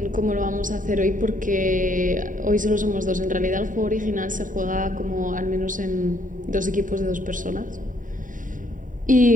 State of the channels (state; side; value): late; left; 0.38 ms